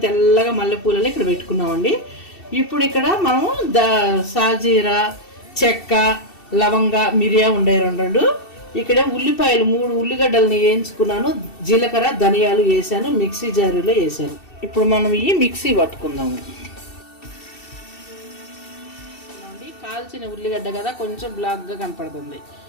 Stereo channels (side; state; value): right; late; 2.7 ms